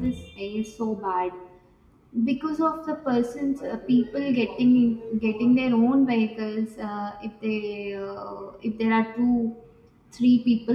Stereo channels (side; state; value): both; identical; correlation 1.00